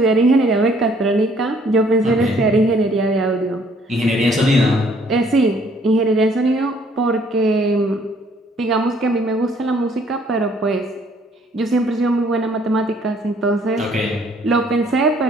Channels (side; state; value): both; normal; correlation 0.62